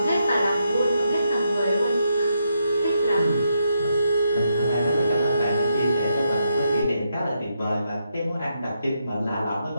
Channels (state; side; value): inverted; both; correlation -0.80